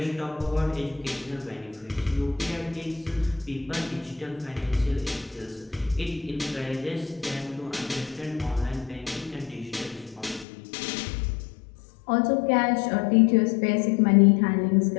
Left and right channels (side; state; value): right; drops out; at 10.5 s